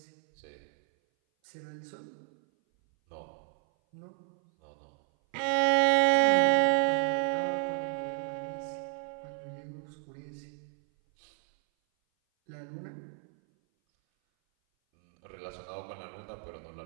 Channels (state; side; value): silent; left; 57 dB below the other